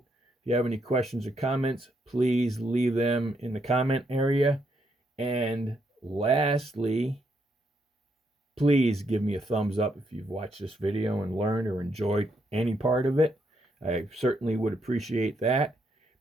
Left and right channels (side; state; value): both; normal; correlation 0.76